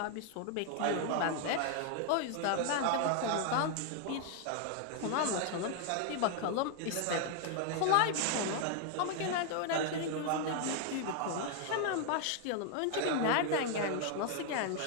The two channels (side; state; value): both; different; correlation 0.00